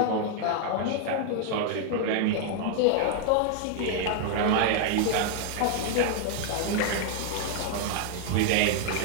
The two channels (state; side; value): different; both; correlation 0.00